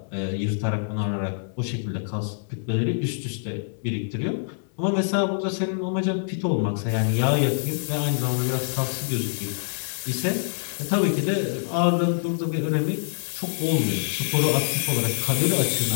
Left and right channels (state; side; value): silent; right; digital silence